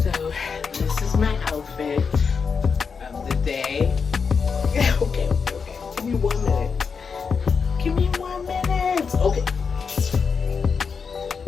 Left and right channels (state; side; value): quieter; right; 5.6 dB